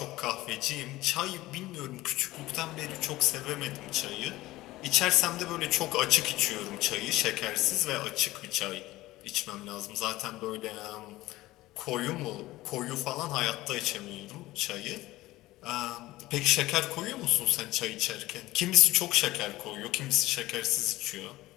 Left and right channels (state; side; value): quieter; right; 17.7 dB